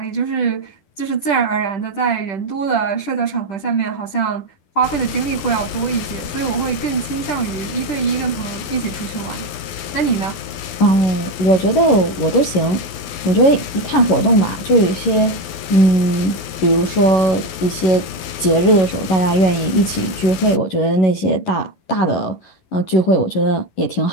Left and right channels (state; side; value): late; right; 12 ms